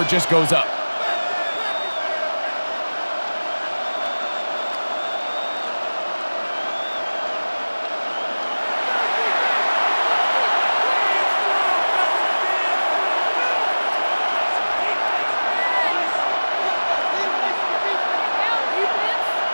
just goes up.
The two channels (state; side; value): inverted; both; correlation -1.00